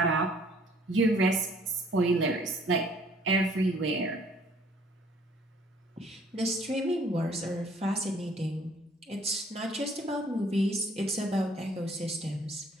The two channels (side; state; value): both; normal; correlation 0.59